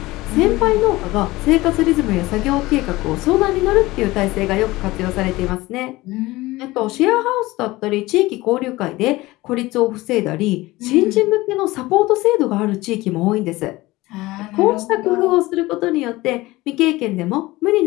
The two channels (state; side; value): quieter; right; 19.5 dB